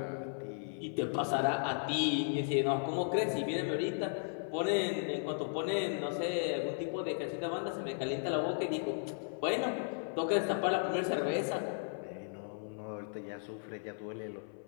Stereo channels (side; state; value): right; silent; 54 dB below the other